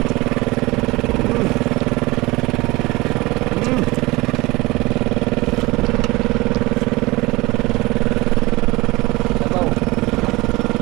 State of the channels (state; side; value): quieter; left; 21.6 dB